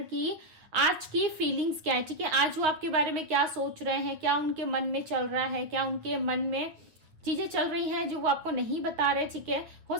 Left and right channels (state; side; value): late; left; 9.3 ms